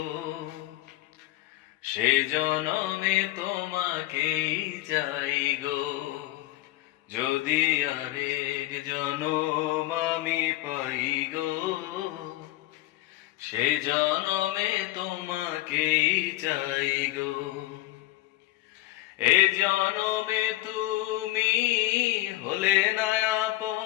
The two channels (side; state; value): right; quieter; 16.7 dB